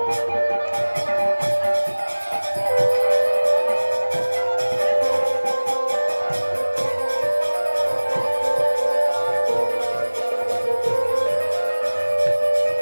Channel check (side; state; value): both; inverted; correlation -1.00